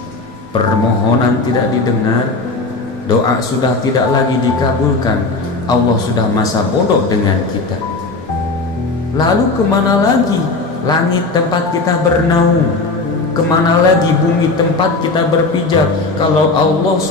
Permohonan tidak didengar, doa sudah tidak lagi dikabulkan, Allah sudah masa bodoh dengan kita. Lalu kemana lagi langit tempat kita bernaung? Kemana lagi bumi tempat kita berpijak kalau Allah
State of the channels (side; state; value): right; quieter; 3.5 dB